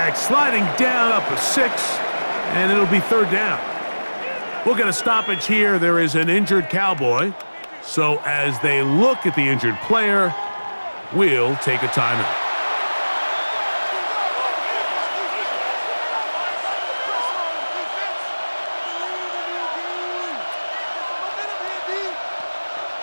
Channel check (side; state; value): both; inverted; correlation -1.00